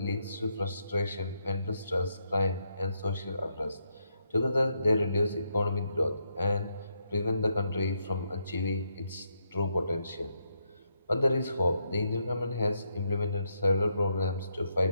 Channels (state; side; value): inverted; both; correlation -0.79